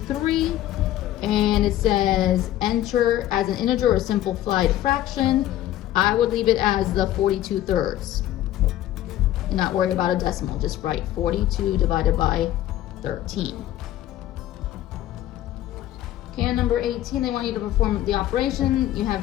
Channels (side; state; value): right; quieter; 13.3 dB